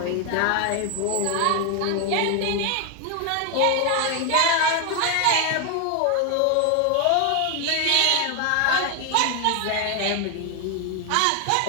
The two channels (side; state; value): both; different; correlation 0.01